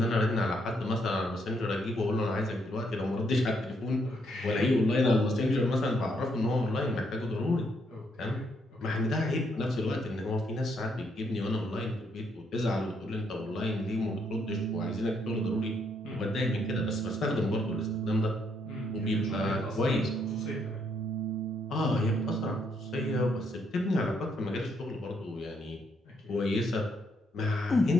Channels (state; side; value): normal; both; correlation 0.73